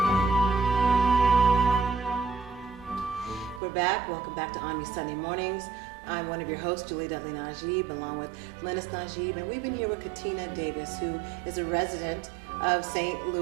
We're back. Welcome back to ONME Sunday Mornings. I'm one of your hosts, Julie Dudley Najib, along with Lennice Najib, and we've been here with Katina Davis, who is a resident of St.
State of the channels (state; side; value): drops out; left; at 3.6 s